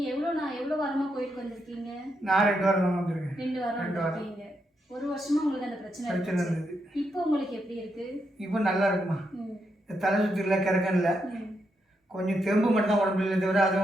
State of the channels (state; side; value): normal; both; correlation 0.81